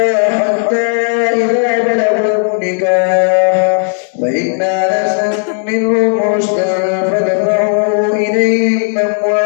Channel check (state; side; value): silent; right; 68 dB below the other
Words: حتى إذا بلغوا النكاح فإن آنستم منهم رشدا فدفعوا إليهم